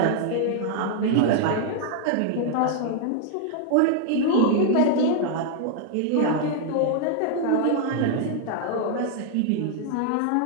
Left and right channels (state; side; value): different; both; correlation 0.00